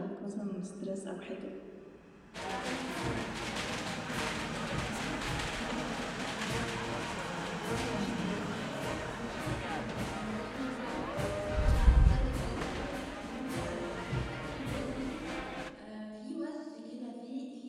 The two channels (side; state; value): both; identical; correlation 1.00